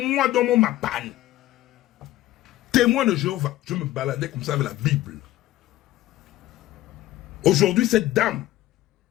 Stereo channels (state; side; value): quieter; right; 15.3 dB